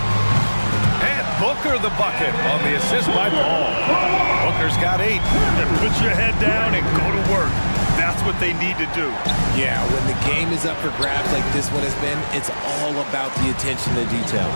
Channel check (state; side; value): inverted; both; correlation -1.00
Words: And Booker the bucket on the assist by Paul. Booker's got 8. Put your head down and go to work. That's what they need to do. Yeah, when the game is up for grabs like this one has been, it's all about the attention to detail.